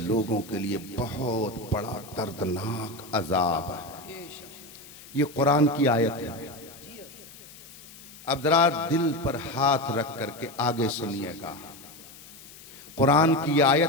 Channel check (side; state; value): left; noise; hiss, 19 dB below the sound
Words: के लिए बहुत बड़ा दर्दनाक अजाब है। ये कुरान की आयत है। अब जरा दिल पर हाथ रख करके आगे सुनिएगा। कुरान की